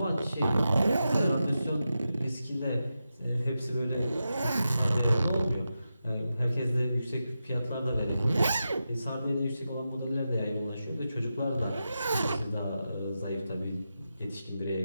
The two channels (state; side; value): inverted; both; correlation -0.90